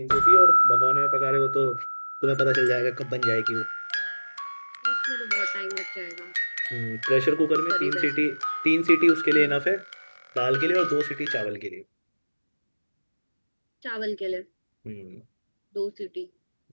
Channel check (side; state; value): both; inverted; correlation -1.00